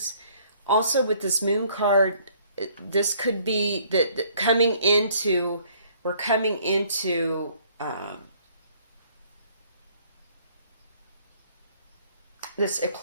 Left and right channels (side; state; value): both; inverted; correlation -0.61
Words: Also, with this moon card, this could be that we're coming into this